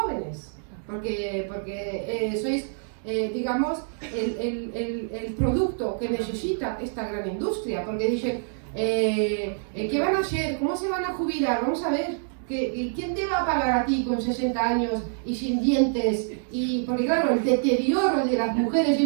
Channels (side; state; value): left; silent; digital silence